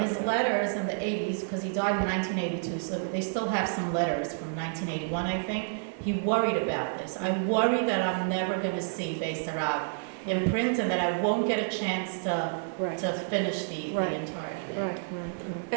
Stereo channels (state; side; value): silent; left; digital silence